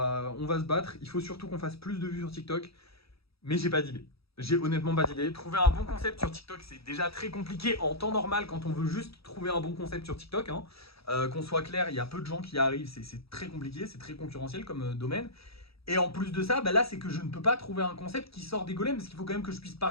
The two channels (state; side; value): late; right; 0.77 ms